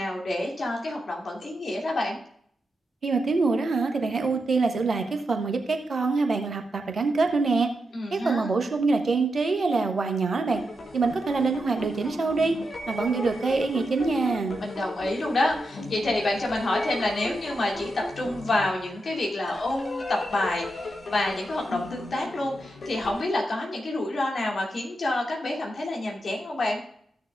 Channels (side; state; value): both; normal; correlation 0.86